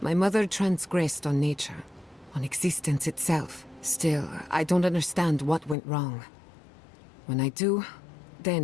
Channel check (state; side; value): drops out; right; at 5.8 s